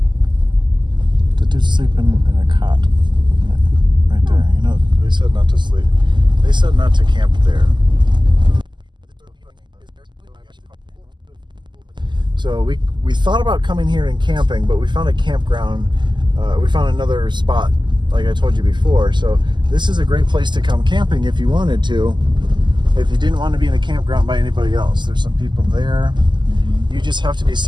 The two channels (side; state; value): left; late; 0.22 ms